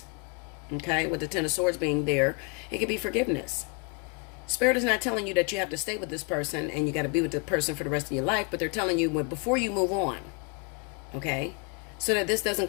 Okay, with the Ten of Swords being there, it could be forgiveness. Spirit is not telling you that you have to stay with this person and you got to be with the person for the rest of your life, but they're telling you before you move on, okay, so that this doesn't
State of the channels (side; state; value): right; quieter; 34.1 dB